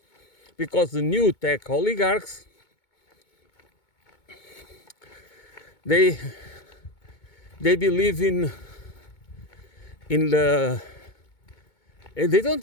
because the new tech oligarchs, they believe in the, they don't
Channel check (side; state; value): right; late; 2.2 ms